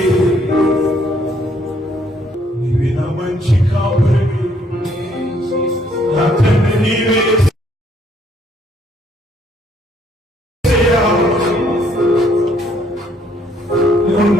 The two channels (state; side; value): normal; both; correlation 0.67